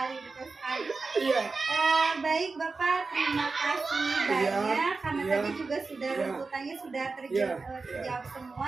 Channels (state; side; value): quieter; left; 4.1 dB